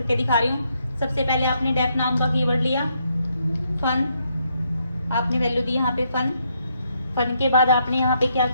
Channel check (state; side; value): inverted; both; correlation -0.76